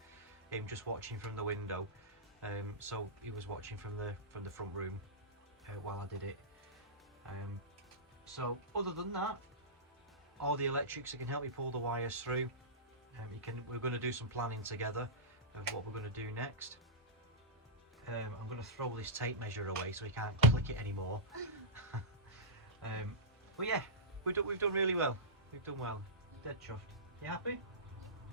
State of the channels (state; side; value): normal; both; correlation -0.16